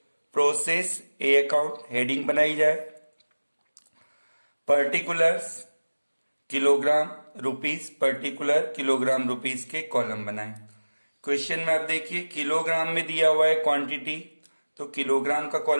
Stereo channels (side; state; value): both; inverted; correlation -1.00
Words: प्रोसेस ए अकाउंट हेडिंग बनाई जाए। Particulars kilogram rupees, particular kilogram rupees के कॉलम बनाएं। क्वेश्चन में आप देखिए किलोग्राम में दिया हुआ है क्वांटिटी, तो किलोग्राम का